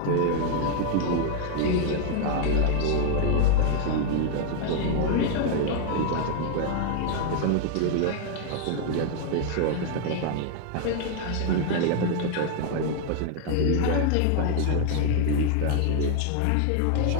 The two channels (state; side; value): different; both; correlation 0.00